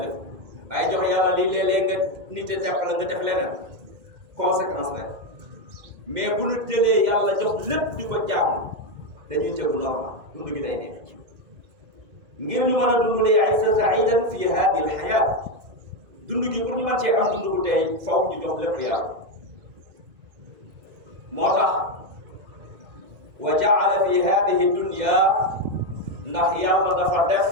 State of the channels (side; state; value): left; late; 2.0 ms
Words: lépp waaye jox yàlla lii léeg-léeg nga nite tepp la nga def leneen conséquence rek mais bu nu jëlee yàlla jox lépp di ko jaamu dañuy tegu normal dund gi day neex ngir ñu mën a dund lay aysa saidan fi hadi al hayat dund gi pour ñu mën cee am dund bu tey faw ñu jox lépp yàlla moo tax wa jaala fi hadihi dunya ndax yàlla dafa def